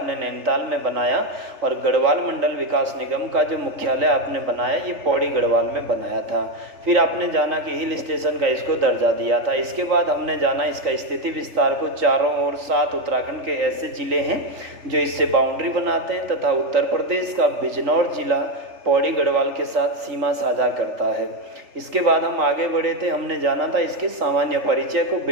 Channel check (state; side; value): late; left; 3.4 ms